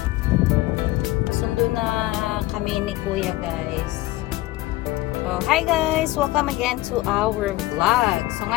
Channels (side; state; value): right; quieter; 18.0 dB